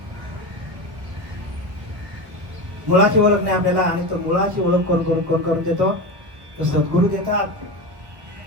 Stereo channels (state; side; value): late; left; 1.3 ms